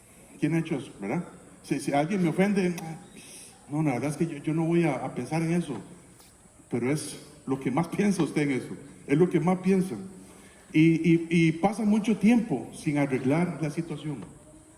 ¿Quién ha hecho eso, verdad? Si alguien me ofende, no, la verdad es que yo no voy a pensar en eso. Pero es lo que más piensa usted en eso. Es lo que más piensa. Y pasa mucho tiempo sin arreglar la situación.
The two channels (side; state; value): both; identical; correlation 1.00